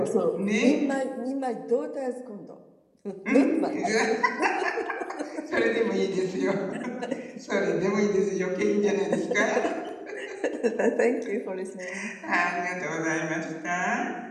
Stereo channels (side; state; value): both; identical; correlation 1.00